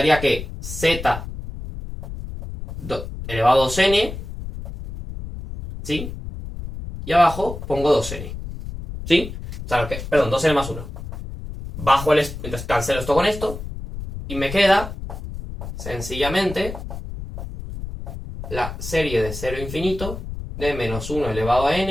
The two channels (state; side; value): noise; left; rumble, 9 dB below the sound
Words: que z elevado a 2n, ¿sí? Y abajo pongo 2n, ¿sí? O sea, perdón, 2n más 1. Bajo entonces cancelo esto con esto. Y me queda, sencillamente, la serie de 0 a infinito de menos 1 elevado a